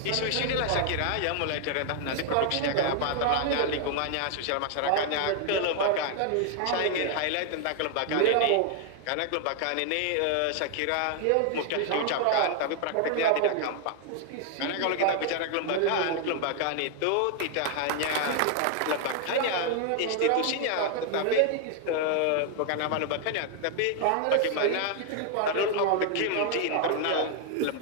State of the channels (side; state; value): both; different; correlation 0.00